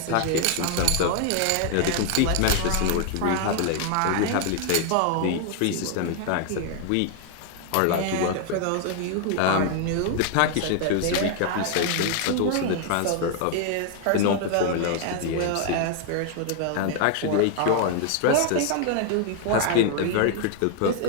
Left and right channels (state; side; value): different; both; correlation 0.00